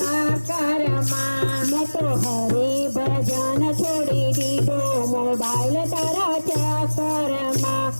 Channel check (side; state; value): both; inverted; correlation -1.00